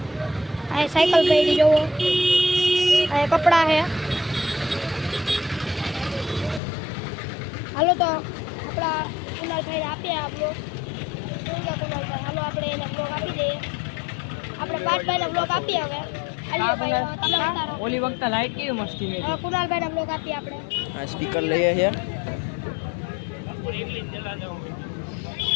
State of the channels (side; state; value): right; drops out; at 6.6 s